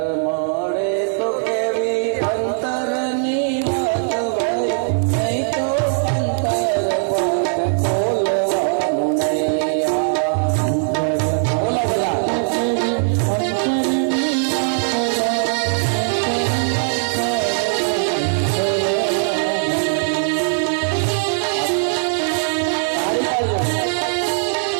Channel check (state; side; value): silent; left; 59 dB below the other